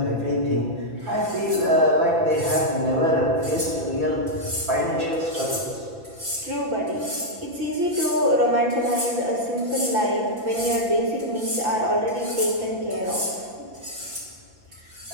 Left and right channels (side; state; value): left; late; 5.9 ms